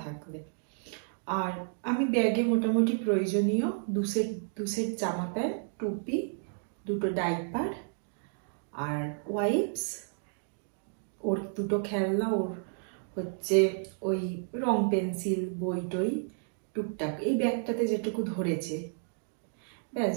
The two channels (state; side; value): silent; left; digital silence